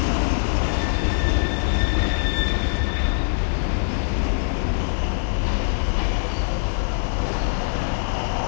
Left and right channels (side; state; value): right; silent; 62 dB below the other